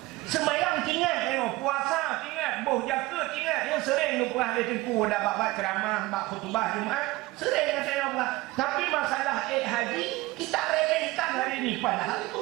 Sembahyang ingat, puasa ingat, bau jakut ingat. Yang sering lupa ada tempuh dah bab ceramah, bab khutbah Jumaat. Sering kata yang Allah. Tapi masalah haji kita remehkan hari ini padahal itu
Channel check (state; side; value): quieter; left; 19.9 dB